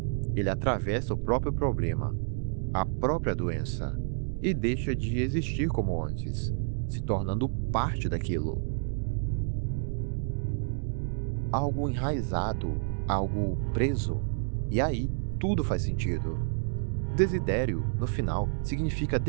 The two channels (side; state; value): left; silent; digital silence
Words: Ele atravessa o próprio problema, a própria doença, e deixa de existir como antes, se tornando parte daquilo. Algo enraizado, algo preso. E aí, tudo faz sentido. Desidério, no final, significa